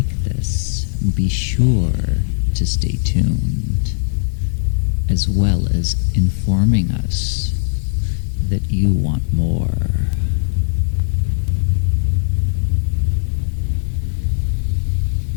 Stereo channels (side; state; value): right; silent; digital silence